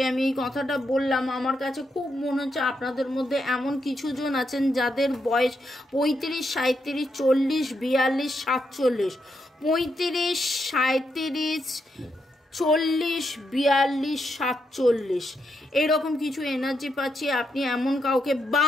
আমি এই কথাটা বললাম, আমার কাছে খুব মনে হচ্ছে আপনাদের মধ্যে এমন কিছু জন আছেন যাদের বয়স 35, 37, 40, 42, 47, 35, 37, 40, 42, 47 এইরকম কিছু এনার্জি পাচ্ছি। আপনি এমন কাউকে,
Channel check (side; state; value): both; normal; correlation 0.81